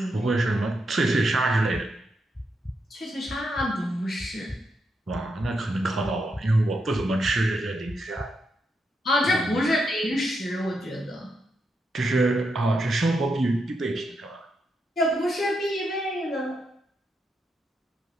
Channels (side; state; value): both; normal; correlation 0.83